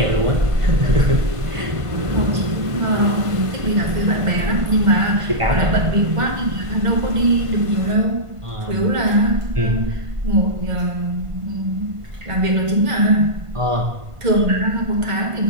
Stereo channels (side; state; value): left; late; 1.5 ms